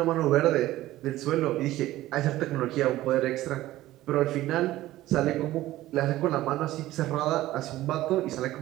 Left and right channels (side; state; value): left; quieter; 15.7 dB